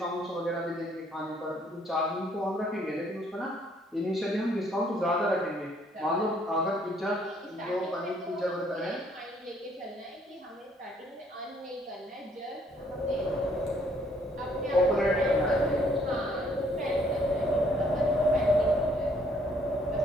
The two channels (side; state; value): both; normal; correlation 0.66